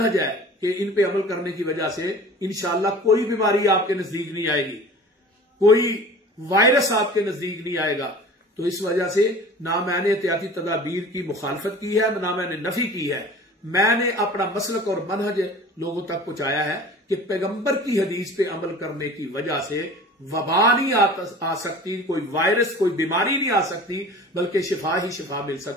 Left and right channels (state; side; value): normal; both; correlation 0.41